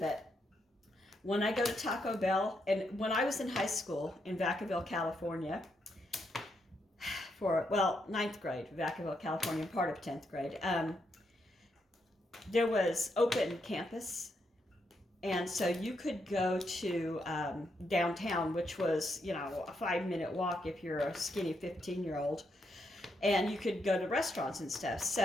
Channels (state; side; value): normal; both; correlation 0.79